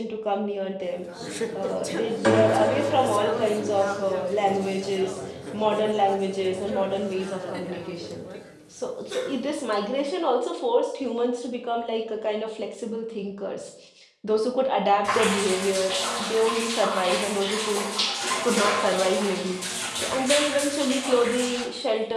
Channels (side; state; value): both; identical; correlation 1.00